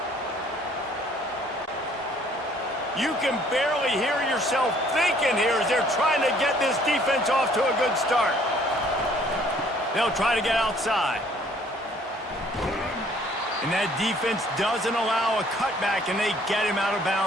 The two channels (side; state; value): both; normal; correlation 0.60